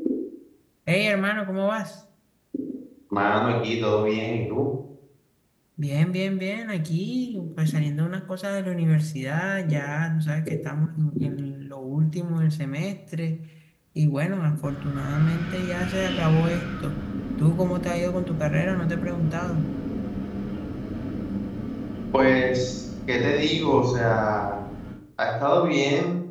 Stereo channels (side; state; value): both; identical; correlation 1.00